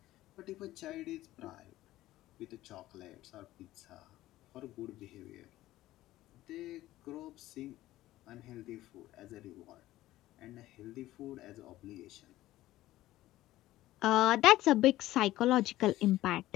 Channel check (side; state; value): right; quieter; 15.7 dB